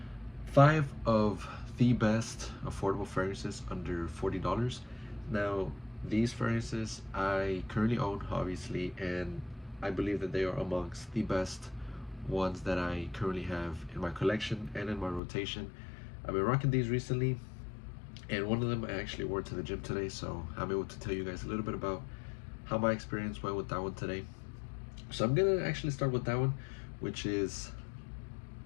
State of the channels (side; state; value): right; drops out; at 15.2 s